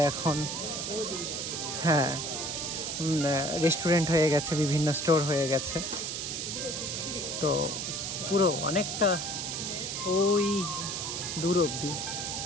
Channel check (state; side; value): noise; right; hiss, 3 dB below the sound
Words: এখন রেস্টুরেন্ট হয়ে গেছে, বিভিন্ন স্টোর হয়ে গেছে। তো পুরো অনেকটা ওই দূর অবধি